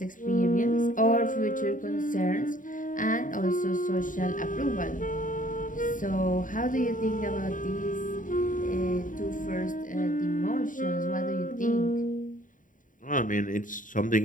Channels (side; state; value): right; late; 0.38 ms